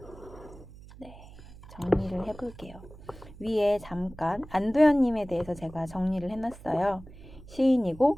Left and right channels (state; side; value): noise; right; hum, 18 dB below the sound